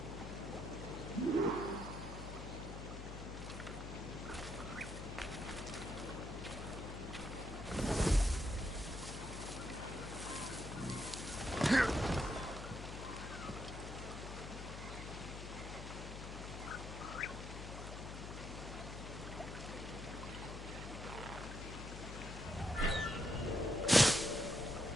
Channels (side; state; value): left; noise; hum, 8 dB below the sound